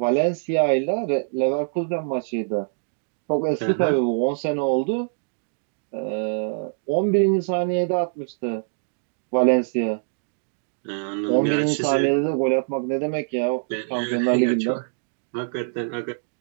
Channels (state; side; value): silent; left; digital silence